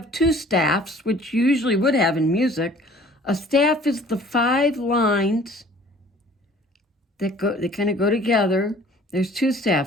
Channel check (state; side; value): normal; both; correlation 0.51